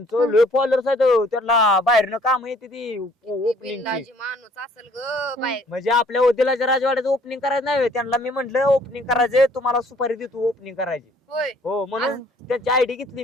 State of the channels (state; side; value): normal; both; correlation 0.59